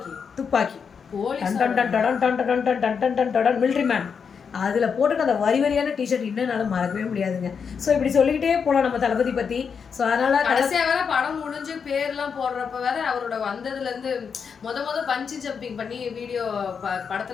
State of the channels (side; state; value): right; quieter; 6.3 dB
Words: துப்பாக்கி மிலிட்ரி மேன், அதில் போட்டுட்டு அந்த வரியான டிஷர்ட் இன்னும் என்னால் மறக்கவே முடியாதுங்க. ஸோ இப்படி சொல்லிக்கிட்டே போகலாம் நம்ம தளபதி பற்றி. ஸோ அதனால் கடைசியாக வேற படம் முடிஞ்சு பேர்லாம் போடுறப்ப வேற அவரோட வந்ததுலேருந்து முத பஞ்சி ஜம்பிங் பண்ணி வீடியோ